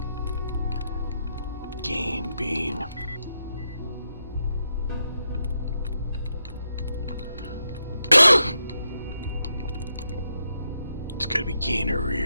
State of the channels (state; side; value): inverted; both; correlation -0.82